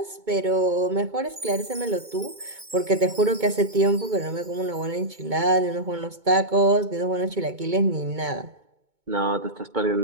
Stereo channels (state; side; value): late; left; 2.2 ms